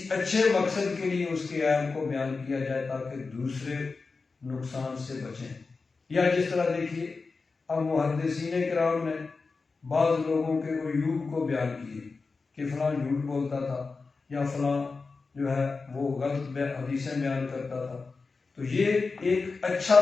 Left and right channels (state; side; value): quieter; right; 4.3 dB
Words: اچھے مقصد کے لیے اس کے عیب کو بیان کیا جائے تاکہ دوسرے نقصان سے بچیں۔ یا جس طرح دیکھیے اب محدثین کرام نے بعض لوگوں کے عیوب کو بیان کیے کہ فلاں جھوٹ بولتا تھا یا فلاں جو ہے وہ غلط حدیثیں بیان کرتا تھا، تو یہ ایک اچھا